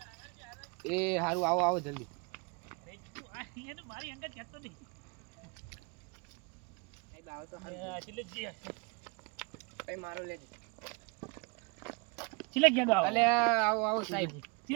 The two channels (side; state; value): left; quieter; 31.6 dB